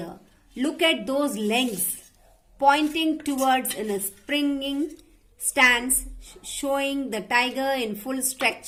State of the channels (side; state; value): both; identical; correlation 1.00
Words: Look at those legs pointing towards in a springing stance, showing the tiger in full